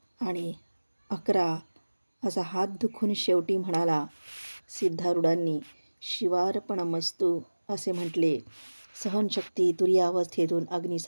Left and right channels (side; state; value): both; inverted; correlation -1.00